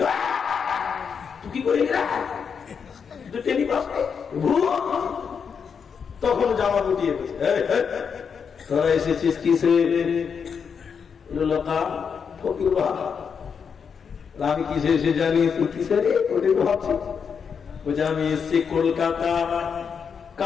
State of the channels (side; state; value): right; quieter; 6.5 dB